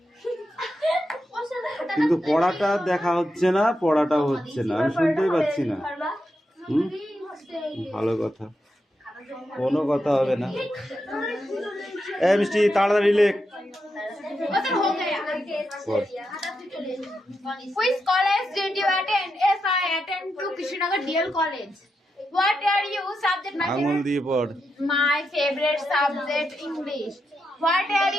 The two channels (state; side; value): normal; both; correlation 0.85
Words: কিন্তু পড়াটা দেখা হচ্ছে না, পড়াটাও হচ্ছে না, আমি শুনতেই পাচ্ছি না। হুম, ভালো কথা, কোনো কথা হবে না। এই মিষ্টি তাড়াতাড়ি লেখ। পড়। Which college did you attend? Yes, I attend to Krishnagar DL College. What are you subject? আঙুল দিয়ে পড়। My favorite subject English. What are